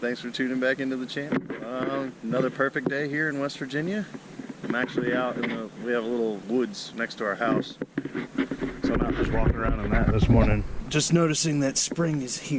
for tuning back into the channel. Another perfect day here in West Virginia. I'm actually out in we have a little woods next to our house. So I'm out just walking around in that this morning. Just noticing that spring is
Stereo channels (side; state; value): both; identical; correlation 1.00